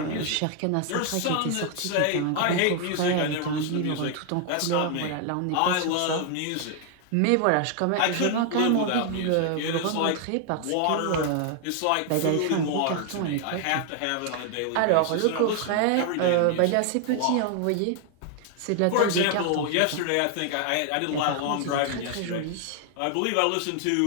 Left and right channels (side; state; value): both; different; correlation 0.00